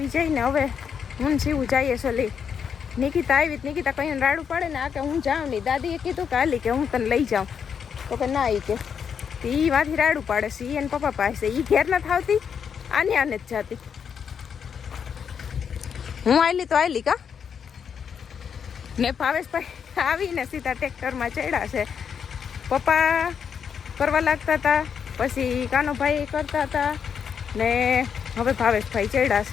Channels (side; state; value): right; quieter; 7.2 dB